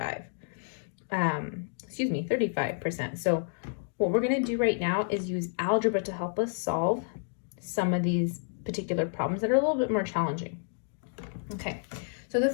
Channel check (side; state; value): right; silent; digital silence